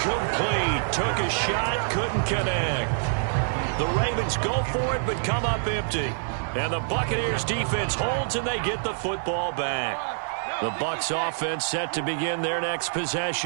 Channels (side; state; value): left; silent; 61 dB below the other